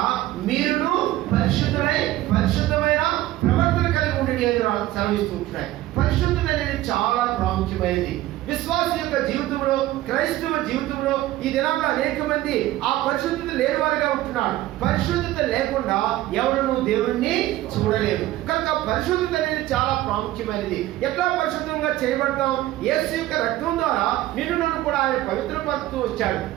మీరును పరిశుద్ధమైన ప్రవర్తన కలిగి ఉండండి అని సెలవిస్తూ ఉంటున్నాయి. పరిశుద్ధత అనేది చాలా ప్రాముఖ్యమైనది. విశ్వాస యొక్క జీవితంలో, క్రైస్తవ జీవితంలో ఈ దినాల్లో అనేక మంది ఆ పరిశుద్ధత లేని వారిగా ఉంటున్నారు. పరిశుద్ధత లేకుండా ఎవరు దేవుణ్ణి చూడలేరు. కనుక పరిశుద్ధత అనేది చాలా ప్రాముఖ్యమైనది. ఎట్లా పరిశుద్ధంగా చేయబడతాం? యేసు యొక్క రక్తం ద్వారా నిన్ను నన్ను కూడా ఆయన పవిత్రపరుస్తూ వచ్చాడు.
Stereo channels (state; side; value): quieter; left; 15.6 dB